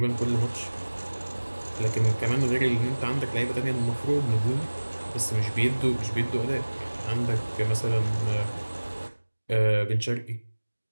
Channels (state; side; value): inverted; both; correlation -1.00